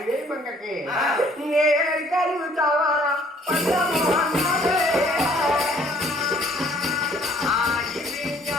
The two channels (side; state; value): both; normal; correlation 0.59